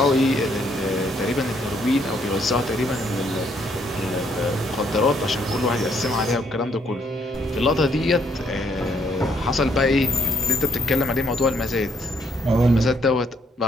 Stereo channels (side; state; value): both; normal; correlation 0.70